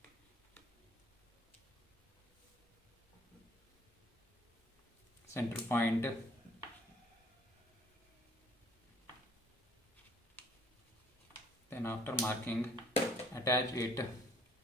center point. Then after marking, attach it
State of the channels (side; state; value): both; normal; correlation 0.58